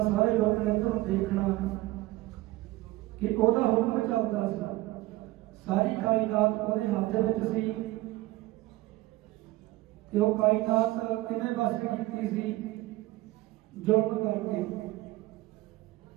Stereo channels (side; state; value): left; quieter; 18.6 dB